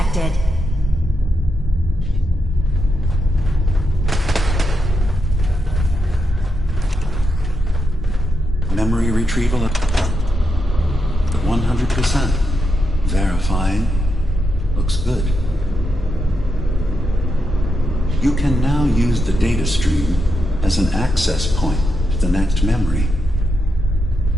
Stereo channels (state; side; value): normal; both; correlation 0.84